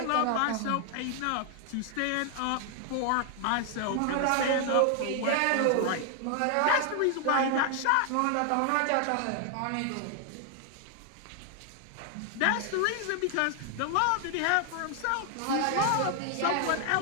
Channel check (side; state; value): both; different; correlation 0.00